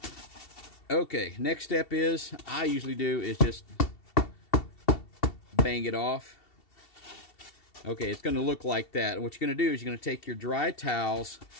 okay, next step is, I usually do is just bang it off. Okay, it's going to look like that. And what you're going to do is you're going to take your dry towels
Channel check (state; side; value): late; right; 2.7 ms